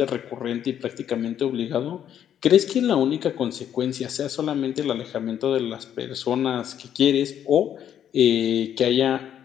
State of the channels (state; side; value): quieter; right; 9.8 dB